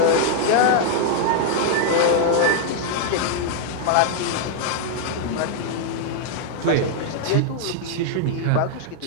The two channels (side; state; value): both; different; correlation 0.00